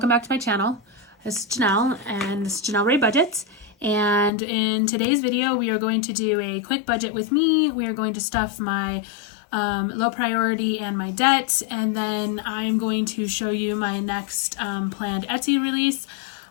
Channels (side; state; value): right; drops out; at 4.3 s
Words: back to my channel. This is Janelle and this is Janelle Ray Budgets. And in today's video, we are going to do a quick budget with me. We are going to stuff my low priority and my debt. And then I'm going to show you my next planned Etsy release.